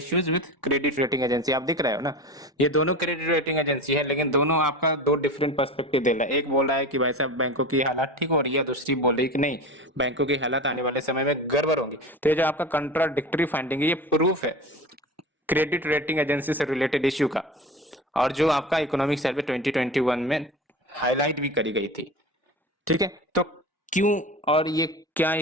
with credit rating agency. आप दिख रहे हो ना, ये दोनों क्रेडिट रेटिंग एजेंसी है, लेकिन दोनों आपका दो डिफरेंट पर्सपेक्टिव दे रहा है। एक बोल रहा है कि भाई साहब बैंकों की हालत ठीक हो रही है, दूसरी बोल रही है कि नहीं, बैंकों की हालत आने वाले समय में गड़बड़ होंगी। तो ये जो आपका कंट्राडिक्टरी फाइंडिंग है ये प्रूफ है क्रेडिट रेटिंग एजेंसी से रिलेटेड इश्यू का, और जो आपका इकोनॉमिक सर्वे 2021 में हाईलाइट भी करी गई थी। ठीक है, तो क्यों और ये क्या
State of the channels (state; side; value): normal; both; correlation 0.30